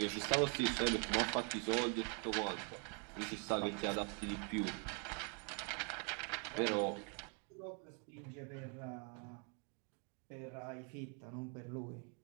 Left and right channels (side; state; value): left; quieter; 38.9 dB